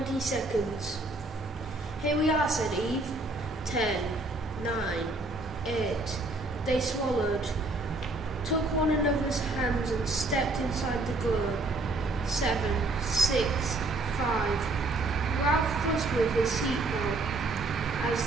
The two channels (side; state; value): left; quieter; 3.0 dB